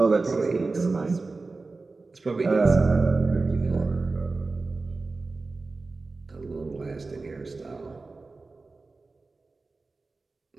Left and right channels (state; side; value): quieter; left; 3.7 dB